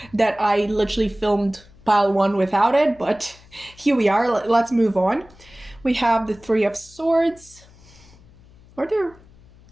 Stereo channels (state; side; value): noise; left; hum, 25 dB below the sound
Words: that I literally filmed pile 1 without it, but here we are. Let's move on. We have the Three of Swords. Are